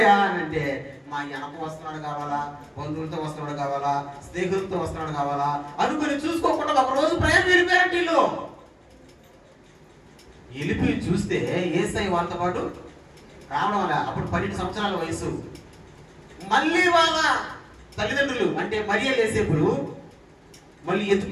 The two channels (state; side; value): identical; both; correlation 1.00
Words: అని అంటే, మా వెనక వస్తున్నాడు కావాలా, బంధువులతో వస్తున్నాడు కావాలా, స్నేహితులతో వస్తున్నాడు కావాలా అనుకుని చూసుకోకుండా ఒక రోజు ప్రయాణం వెళ్ళిపోయారంటే వీళ్ళు. వెళ్ళిపోయి చూస్తే యేసయ్య వాళ్ళతో పాటు రావడం వల్ల అప్పుడు 12 సంవత్సరాల వయసు. మళ్ళీ వాళ్ళ తల్లిదండ్రులు అంటే మరియా యేసేపులు మళ్ళీ